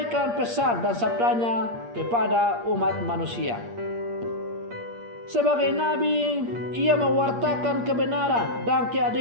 pesan dan sabdanya kepada umat manusia. Sebagai nabi, ia mewartakan kebenaran dan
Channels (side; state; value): left; late; 8.6 ms